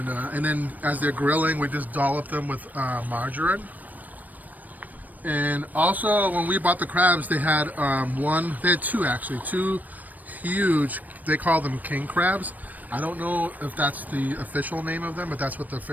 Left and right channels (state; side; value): late; left; 0.081 ms